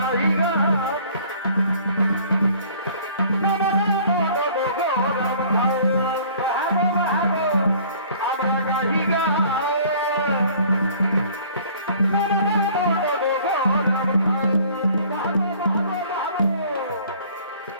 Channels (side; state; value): both; inverted; correlation -0.53